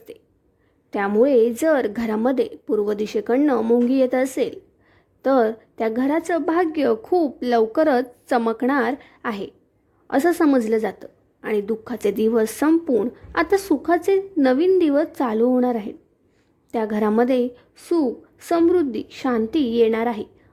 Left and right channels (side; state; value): both; identical; correlation 1.00